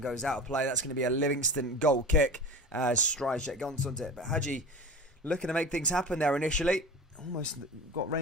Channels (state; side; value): normal; both; correlation 0.33